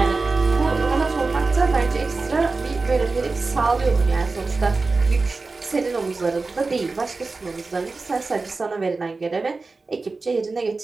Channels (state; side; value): quieter; left; 3.8 dB